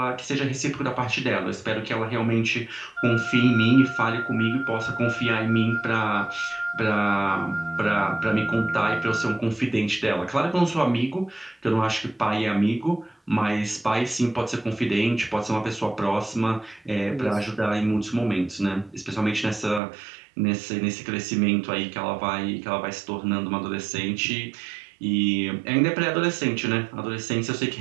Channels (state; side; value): drops out; left; at 19.8 s